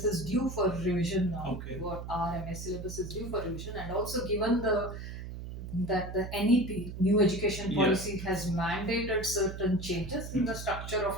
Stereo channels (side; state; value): right; noise; hum, 9 dB below the sound